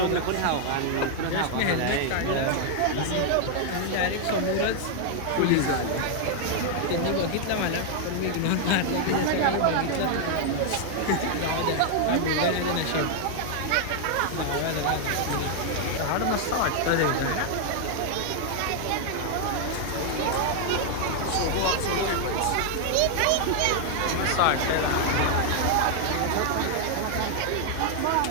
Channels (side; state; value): both; different; correlation 0.00